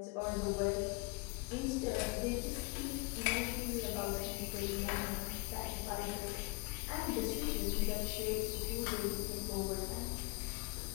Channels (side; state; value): right; quieter; 27.5 dB